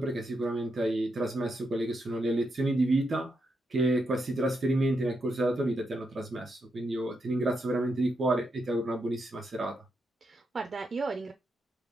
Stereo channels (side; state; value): both; normal; correlation 0.83